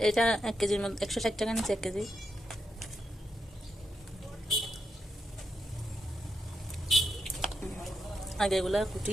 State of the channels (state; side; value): normal; both; correlation 0.83